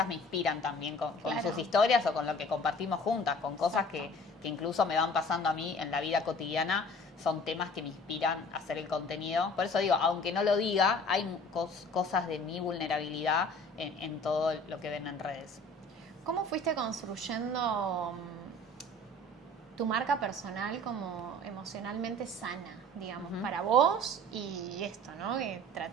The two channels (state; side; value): normal; both; correlation 0.47